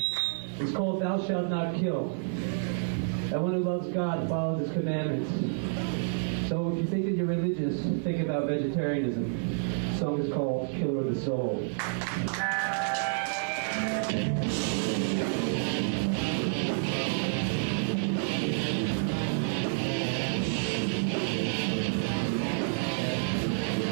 is called "Thou shalt not kill." Everyone who loves God follows His commandments. So if you think that you're religious, think about vegetarianism. The song is called "Killer of the Soul."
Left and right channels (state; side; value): silent; left; 58 dB below the other